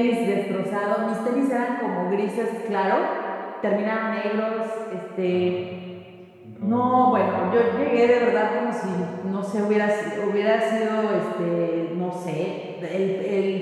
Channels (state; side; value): identical; both; correlation 1.00